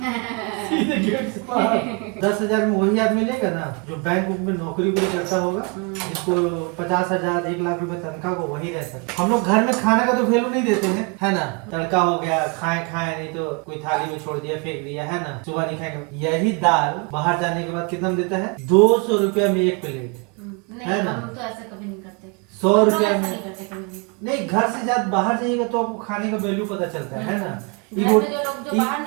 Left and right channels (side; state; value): left; quieter; 31.5 dB